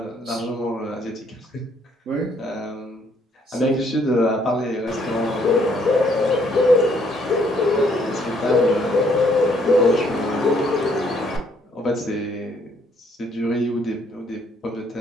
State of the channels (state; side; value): normal; both; correlation 0.67